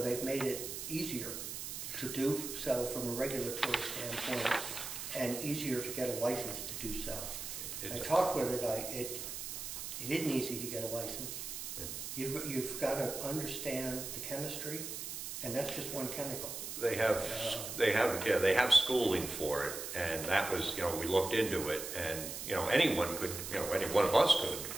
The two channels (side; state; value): right; noise; hiss, 6 dB below the sound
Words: made it easier to do so from a regulatory standpoint and easier to get a license to do so. I talked with a guy, it isn't easy to get a license. You've got to understand the chemistry, and that's just one chemical. They have schooling for it, and that was, we looked into it, and, anyone could, any one of us could,